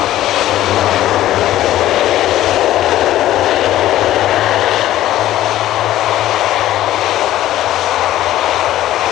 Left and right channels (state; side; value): quieter; right; 13.9 dB